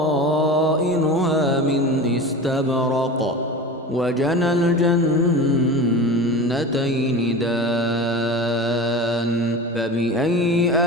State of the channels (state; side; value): normal; both; correlation 0.32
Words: من استبرق وجنى الجنتين دان فبأي